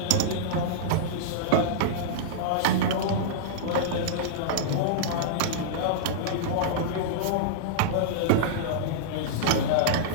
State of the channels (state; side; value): different; both; correlation -0.03